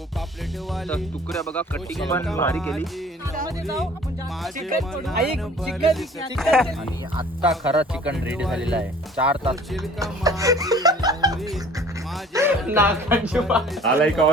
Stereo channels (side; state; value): both; normal; correlation 0.49